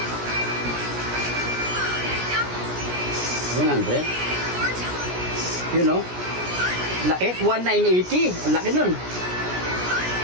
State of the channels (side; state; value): left; late; 17 ms